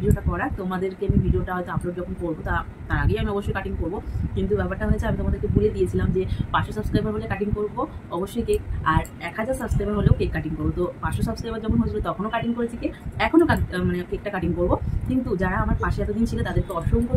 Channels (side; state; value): both; identical; correlation 1.00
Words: করা। তোমাদেরকে আমি ভিডিওটা হয়তো আপলোড যখন করবো তার আগেই আমি অবশ্যই কাটিং করবো। কিন্তু ব্যাপারটা হয়েছে, আমি তোমাদেরকে বলে দিয়েছিলাম যে 500 সাবস্ক্রাইবার হলে কাটিং করবো অবশ্যই কেক, আর 1000 সাবস্ক্রাইবার হলেও কেক কাটিং করবো। তো 500 সাবস্ক্রাইবার যখন হয়েছিল তখনও কাটিং করেছি কেক, এখনও মানে কেকটা কাটিং করবো। কিন্তু যারা আমার পাশে এতদিন ছিল তাদেরকে অসংখ্য